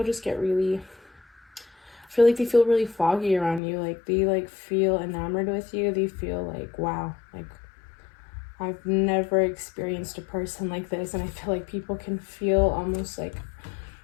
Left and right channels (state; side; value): drops out; right; at 3.6 s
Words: just get really, I feel like they feel really foggy around you. Like, they like feel enamored with you. They feel like, wow, like, I've never experienced a person like this. And I feel like people can feel almost like